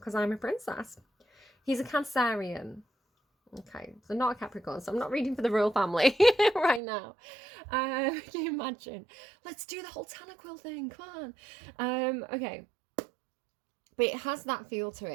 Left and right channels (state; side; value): drops out; left; at 6.8 s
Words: I'm a princess. He's a Cancerian. Okay, so not a Capricorn, so I'm not reading for the royal family right now. Can you imagine? Let's do the whole Tanaquil thing, come on. Okay. But it has that feel to